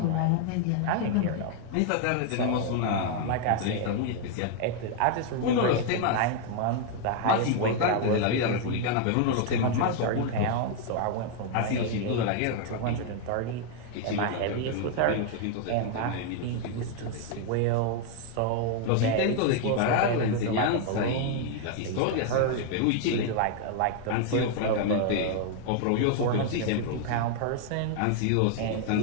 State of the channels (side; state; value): both; different; correlation 0.00